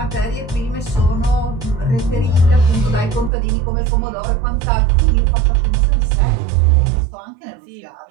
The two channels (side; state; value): left; drops out; at 3.3 s